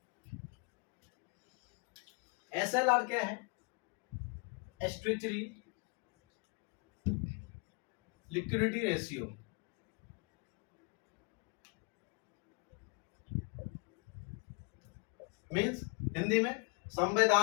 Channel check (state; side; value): quieter; right; 33.4 dB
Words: SLR क्या है? Statutory liquidity ratio. Means Hindi में